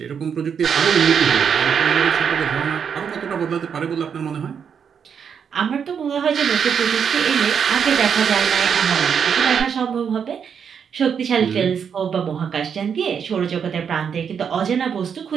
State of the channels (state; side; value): quieter; left; 7.2 dB